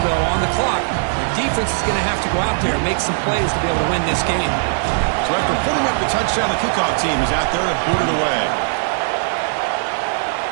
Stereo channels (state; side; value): silent; left; digital silence